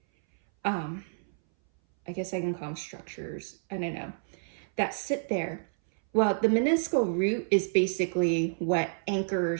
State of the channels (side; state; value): left; silent; 58 dB below the other